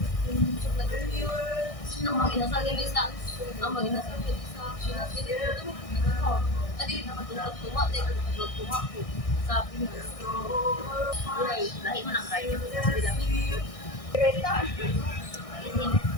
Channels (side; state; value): right; late; 1.6 ms